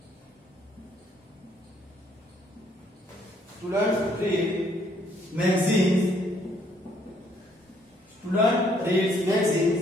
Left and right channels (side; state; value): both; normal; correlation 0.67